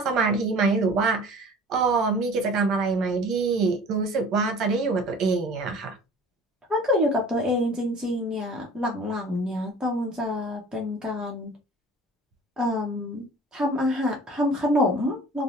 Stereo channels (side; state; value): both; normal; correlation 0.45